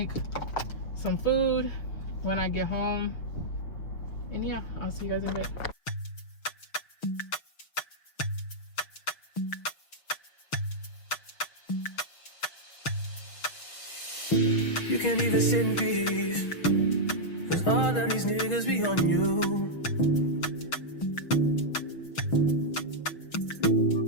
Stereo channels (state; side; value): late; right; 6.3 ms